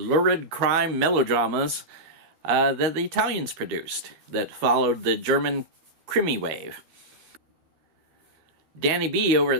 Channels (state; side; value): late; left; 13 ms